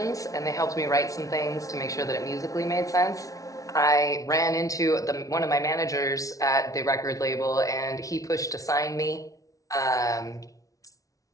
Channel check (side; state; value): right; late; 0.17 ms